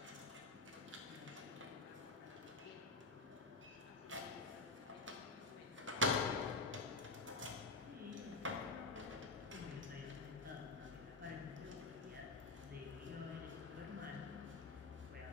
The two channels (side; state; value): right; quieter; 3.4 dB